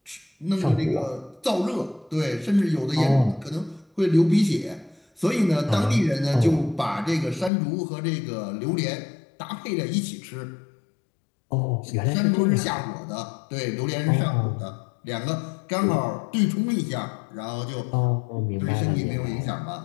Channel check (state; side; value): drops out; right; at 7.5 s